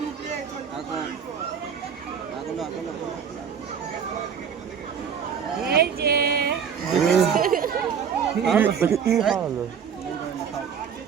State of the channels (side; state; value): left; quieter; 7.3 dB